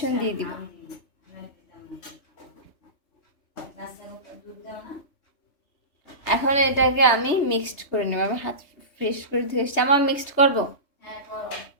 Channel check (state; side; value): late; right; 3.3 ms